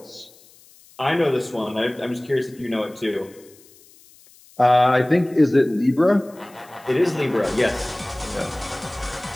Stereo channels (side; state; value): left; noise; hiss, 26 dB below the sound